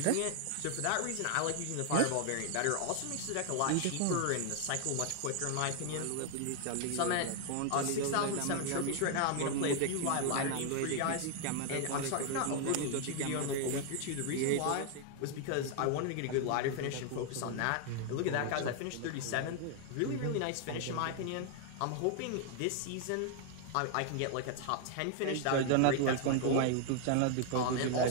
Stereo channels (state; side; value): different; both; correlation 0.00